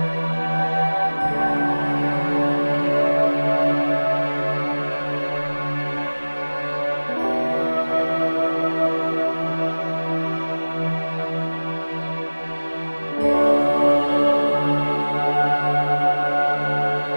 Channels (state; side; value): inverted; both; correlation -1.00